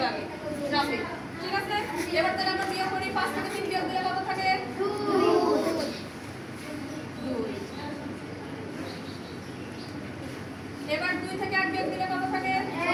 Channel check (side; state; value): both; identical; correlation 1.00